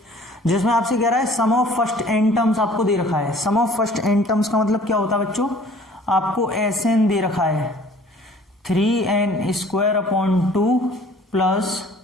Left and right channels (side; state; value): both; normal; correlation 0.52